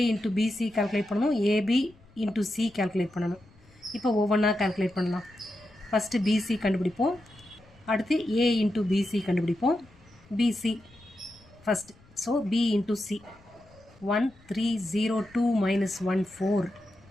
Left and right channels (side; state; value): left; noise; rumble, 27 dB below the sound